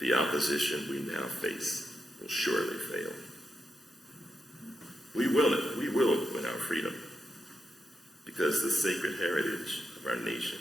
opposition we now face will surely fail. We will win our freedom, because the sacred heritage of our nation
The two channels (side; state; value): both; normal; correlation 0.85